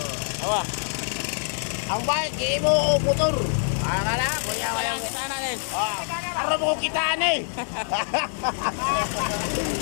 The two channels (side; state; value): right; silent; digital silence